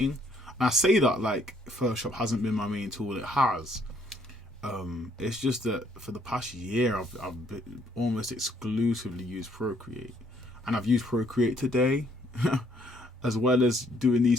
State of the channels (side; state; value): both; normal; correlation 0.66